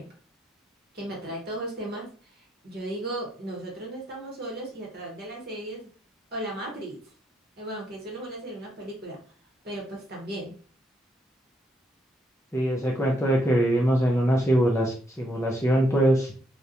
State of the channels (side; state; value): both; normal; correlation 0.77